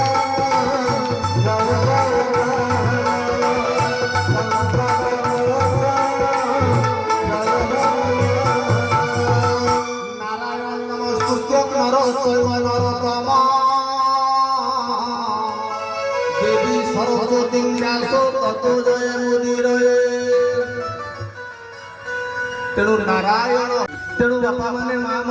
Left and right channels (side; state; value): both; identical; correlation 1.00